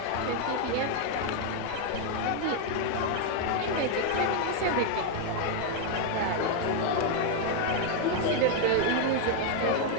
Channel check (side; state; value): both; different; correlation 0.00